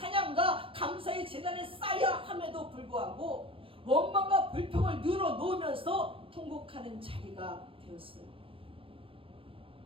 감사의 제단에 쌓여야 함에도 불구하고 원망과 불평을 늘어놓으면서 통곡하는 자리가 되었어요.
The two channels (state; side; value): late; left; 0.26 ms